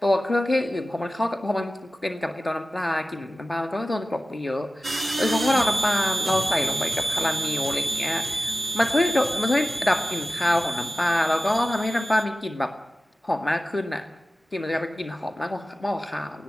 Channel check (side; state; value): both; normal; correlation 0.95